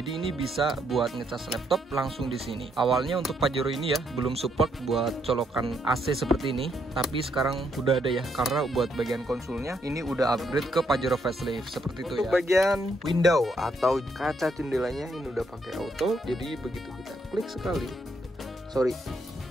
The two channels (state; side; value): normal; both; correlation 0.75